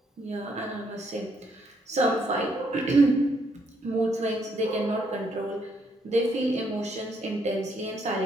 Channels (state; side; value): normal; both; correlation 0.72